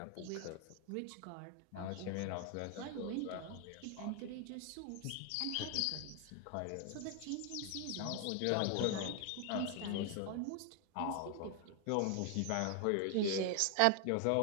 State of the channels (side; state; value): both; different; correlation 0.00